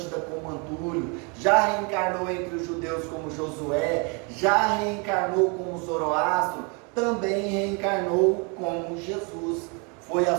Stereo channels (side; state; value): left; quieter; 33.6 dB